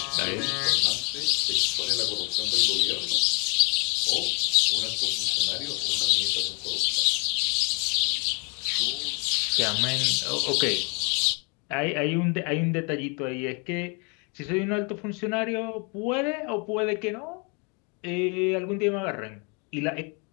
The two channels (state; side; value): quieter; right; 33.6 dB